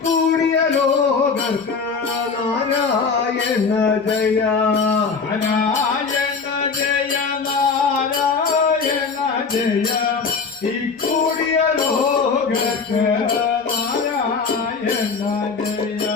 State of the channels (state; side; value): quieter; right; 5.0 dB